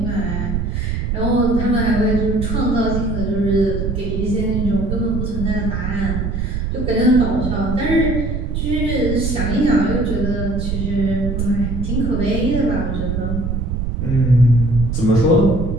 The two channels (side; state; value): right; noise; rumble, 2 dB below the sound